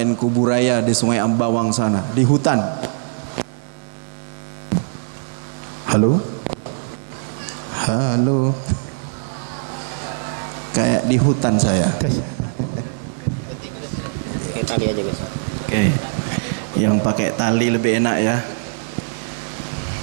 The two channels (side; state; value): left; silent; digital silence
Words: Kuburaya di Sungai Ambawang sana, di hutan. Halo? Halo? Kayak di hutan saya. Pakai tali aja guys. Oke. Yang pakai tali lebih enak ya.